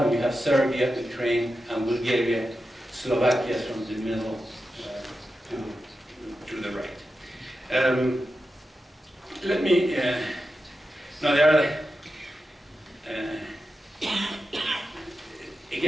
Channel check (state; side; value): normal; both; correlation 0.91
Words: you have Serbia, Ukraine, and Bulgaria, Slovakia from the middle to the right. Let me, now there are,